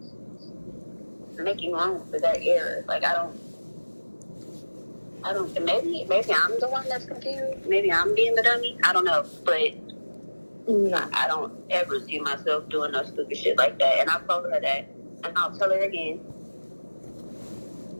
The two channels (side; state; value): both; inverted; correlation -1.00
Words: making room for that error? Like, I don't. Maybe I'm the one that's confused. Maybe I'm being the dummy. I don't know, but I don't ever see myself doing no stupid shit like that. And I've told her that, and I'll tell her again,